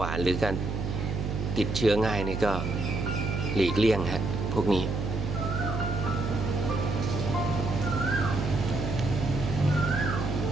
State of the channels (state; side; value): noise; right; hum, 3 dB below the sound